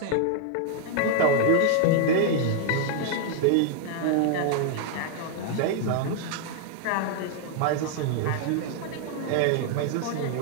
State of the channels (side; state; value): both; different; correlation 0.00